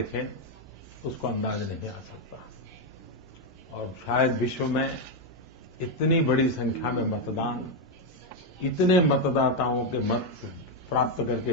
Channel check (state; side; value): normal; both; correlation 0.04